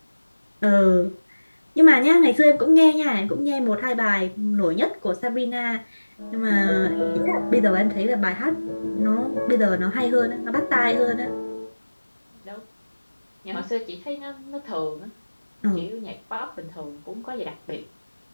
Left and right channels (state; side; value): inverted; both; correlation -1.00